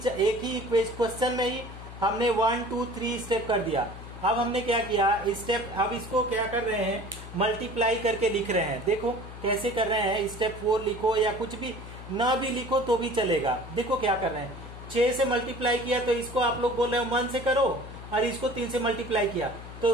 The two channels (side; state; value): left; noise; hum, 13 dB below the sound